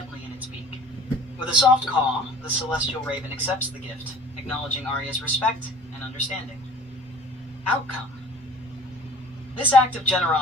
in its beak. With a soft caw, the celestial raven accepts the gift, acknowledging Arya's respect and understanding. Outcome. This act of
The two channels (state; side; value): normal; both; correlation 0.47